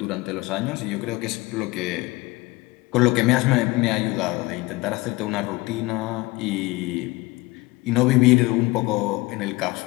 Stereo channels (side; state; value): right; quieter; 21.9 dB